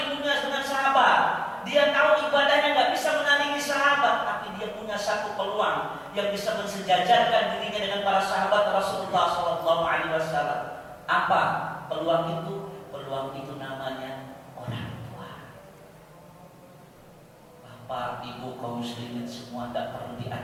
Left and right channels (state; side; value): identical; both; correlation 1.00